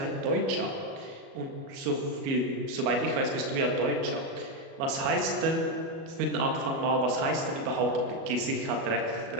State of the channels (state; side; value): late; left; 37 ms